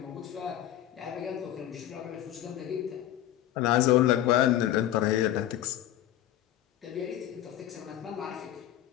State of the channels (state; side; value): quieter; right; 12.6 dB